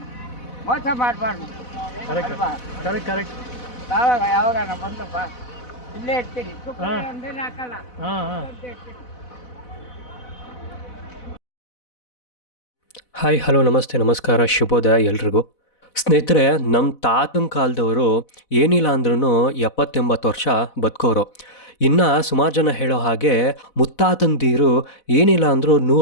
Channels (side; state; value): right; late; 4.1 ms